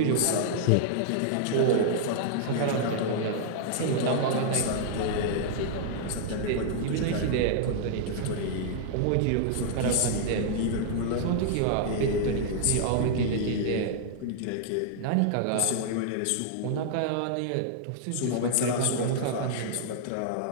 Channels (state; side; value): different; both; correlation -0.01